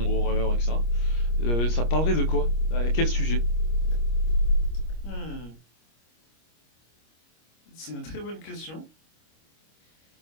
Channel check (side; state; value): right; late; 25 ms